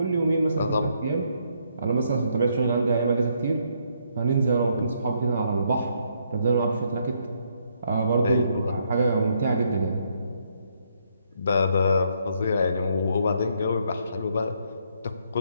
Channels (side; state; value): both; inverted; correlation -0.73